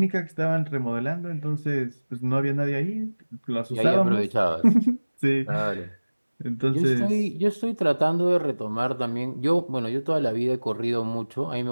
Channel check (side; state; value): both; inverted; correlation -1.00